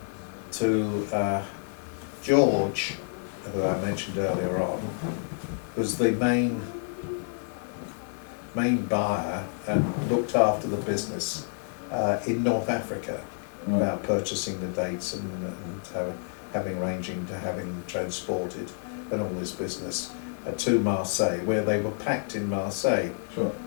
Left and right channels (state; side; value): silent; right; 59 dB below the other